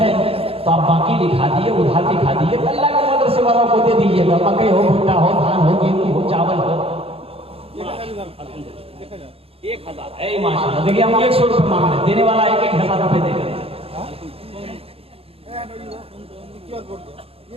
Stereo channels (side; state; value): left; late; 0.28 ms